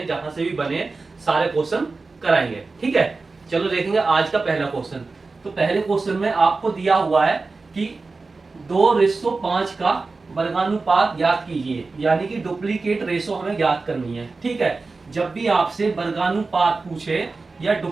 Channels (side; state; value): left; quieter; 3.9 dB